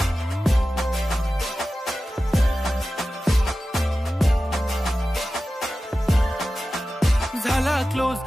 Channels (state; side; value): normal; both; correlation 0.94